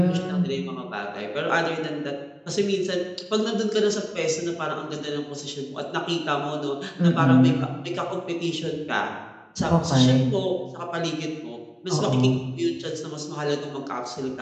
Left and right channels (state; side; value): identical; both; correlation 1.00